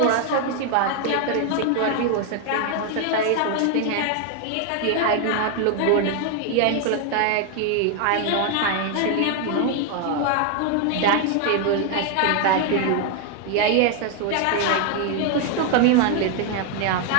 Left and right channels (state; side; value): different; both; correlation 0.01